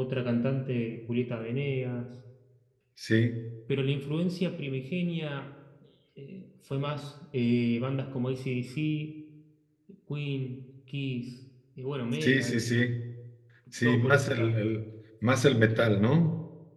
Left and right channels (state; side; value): identical; both; correlation 1.00